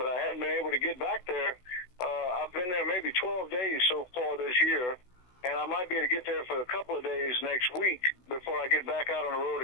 I hadn't been able to get back there. I've been there maybe 12 days so far this year, and I might be able to get there for a couple of days next week before I get back out on the road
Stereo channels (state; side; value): late; right; 16 ms